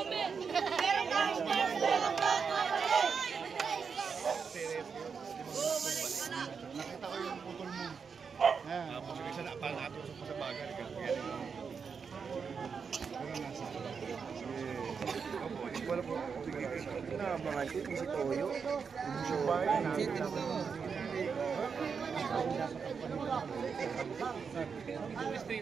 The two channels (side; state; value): left; quieter; 5.9 dB